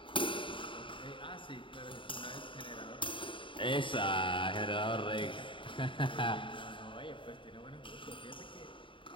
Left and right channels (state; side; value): late; right; 0.25 ms